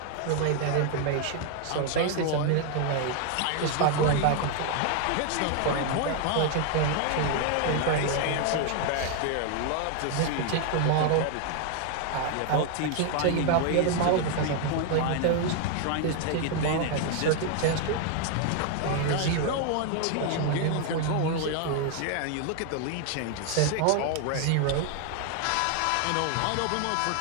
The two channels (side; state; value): both; different; correlation 0.00